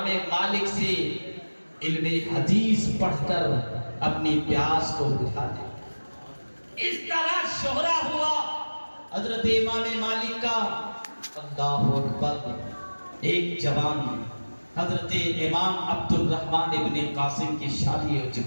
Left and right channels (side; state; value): both; inverted; correlation -1.00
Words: مالک سے علم حدیث پڑھ کر اپنی پیاس کو بجھاتے۔ اس طرح شہرہ ہوا حضرت امام مالک کا۔ اللہ اکبر، ایک جوان حضرت امام عبد الرحمن ابن قاسم کی شادی ہو